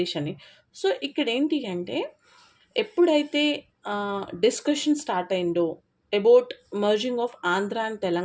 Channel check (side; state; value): both; identical; correlation 1.00